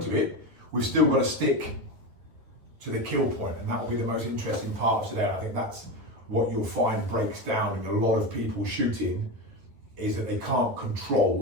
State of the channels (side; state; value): left; late; 11 ms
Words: of it. We've still got to stick to the kill point, and that will be the most interesting part of today. I think that's what you'll find breaks down in a lot of people shooting, is that they can't